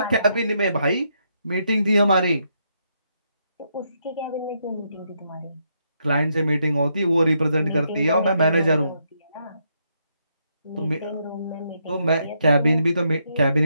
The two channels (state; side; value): inverted; both; correlation -0.77